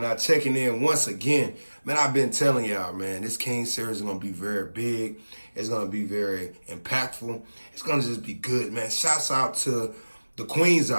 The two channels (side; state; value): both; inverted; correlation -1.00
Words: checking in once again. Man, I've been telling y'all, man, this King Series is going to be very big. It's going to be very impactful. It's going to just be good, man. Shouts out to the queens